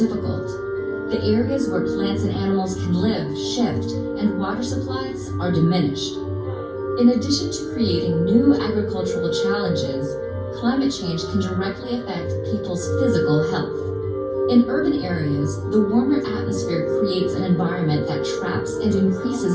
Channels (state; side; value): identical; both; correlation 1.00